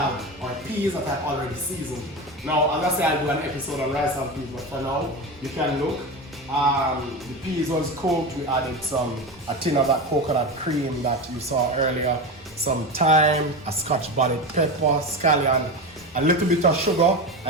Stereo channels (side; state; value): both; normal; correlation 0.22